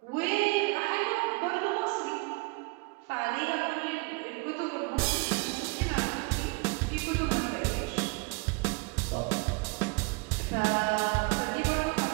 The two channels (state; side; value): quieter; left; 28.3 dB